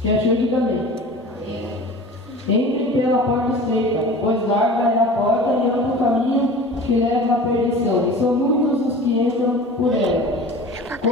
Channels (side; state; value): both; normal; correlation 0.39